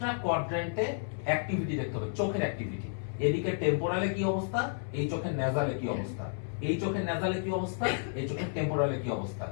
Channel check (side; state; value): right; silent; 57 dB below the other